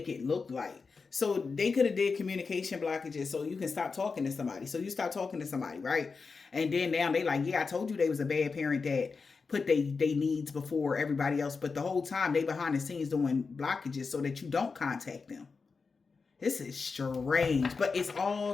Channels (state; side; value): quieter; right; 4.7 dB